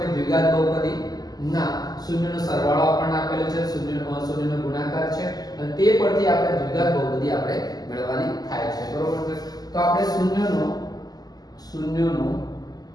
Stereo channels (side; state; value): right; late; 0.19 ms